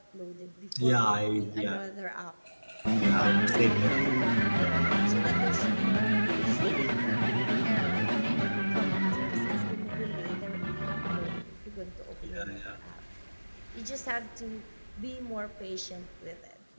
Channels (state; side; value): inverted; both; correlation -1.00